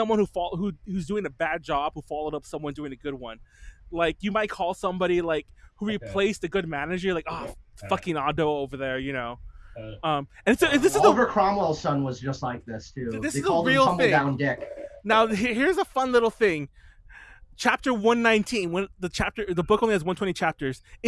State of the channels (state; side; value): identical; both; correlation 1.00